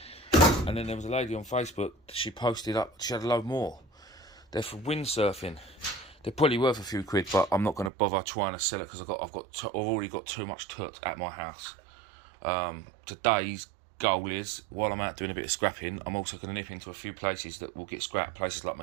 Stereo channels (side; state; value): left; drops out; at 7.9 s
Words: and then there was a lady on Facebook. She posted up. She had a load more. They're for windsurfing. They're probably worth a few quid, but I'm not going to bother trying to sell it because I've already got too much tut at my house. Today's goal is, while I'm out doing a bit of scrapping, I'm also going to nip into a few places that will get scrapped, places like